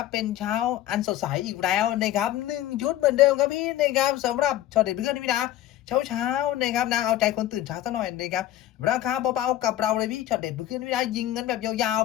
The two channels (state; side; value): quieter; right; 13.5 dB